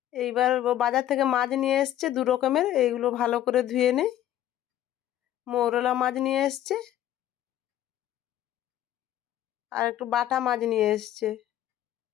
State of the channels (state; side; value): quieter; right; 12.3 dB